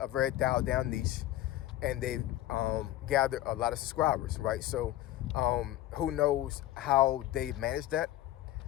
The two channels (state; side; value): quieter; right; 14.5 dB